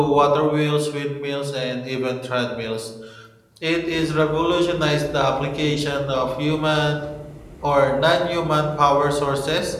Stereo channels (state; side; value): identical; both; correlation 1.00